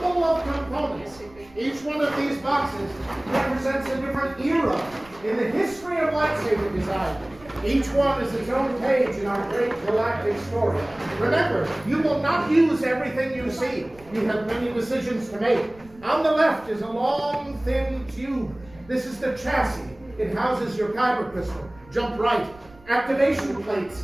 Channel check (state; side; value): noise; right; rumble, 24 dB below the sound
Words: of components. Each one of these boxes represents a different era in the history of lightsaber design. Each one is its own page in our great galactic story. Remember, you will not use everything you see. You have many decisions to make. On the left is a long, thin tube. This is the chassis. It houses your kyber crystal. Jump right. Activation plates